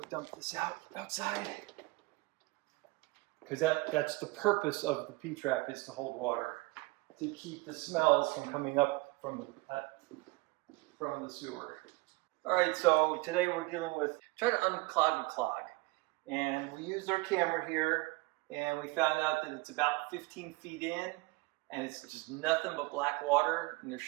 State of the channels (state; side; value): quieter; left; 23.3 dB